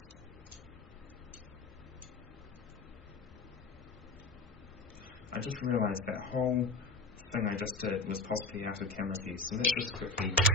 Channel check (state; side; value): quieter; right; 3.5 dB